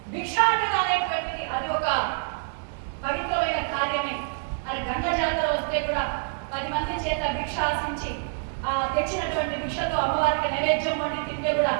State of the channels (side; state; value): left; silent; digital silence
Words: భిక్షాటన అనేటువంటిది అది ఒక పవిత్రమైన కార్యమే. అది గంగ జాతర వస్తే కూడా 10 మంది చేత భిక్ష ఆశించి ఆ తెచ్చినటువంటి భిక్షతో అమ్మవారికి నైవేద్యం వండి తింటే కూడా